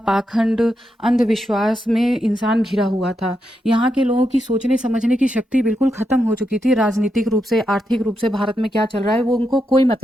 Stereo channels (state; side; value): normal; both; correlation 0.84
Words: पाखंड, अंधविश्वास में इंसान घिरा हुआ था। यहाँ के लोगों की सोचने समझने की शक्ति बिल्कुल ख़त्म हो चुकी थी। राजनीतिक रूप से, आर्थिक रूप से भारत में क्या चल रहा है वो उनको कोई